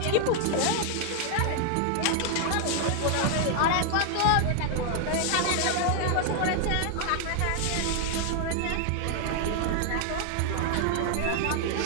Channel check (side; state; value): both; different; correlation 0.00